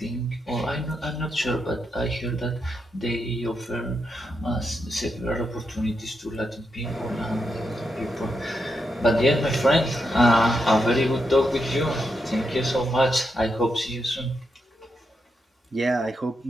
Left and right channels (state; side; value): normal; both; correlation 0.83